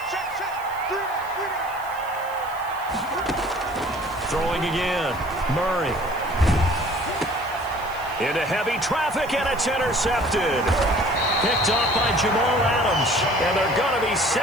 Throwing again. Murray. Into heavy traffic, and it's intercepted. Picked off by Jamal Adams. And they're going to be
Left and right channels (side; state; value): left; noise; hiss, 21 dB below the sound